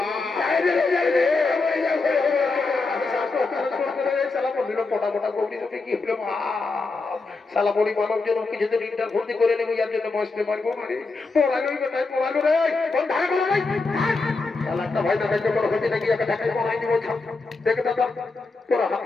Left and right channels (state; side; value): quieter; right; 3.8 dB